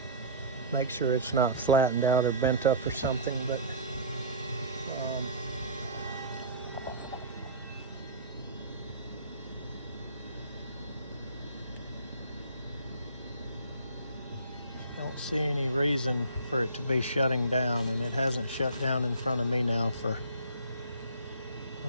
make sure it's not flattened out or bent up or something, but don't see any reason for it to be shutting down, and it hasn't shut down in front of me now for, I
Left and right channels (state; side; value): inverted; both; correlation -0.39